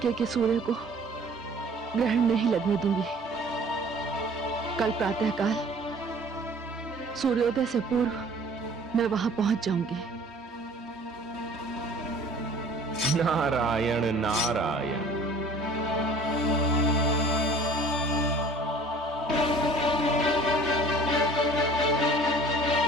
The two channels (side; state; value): both; normal; correlation 0.48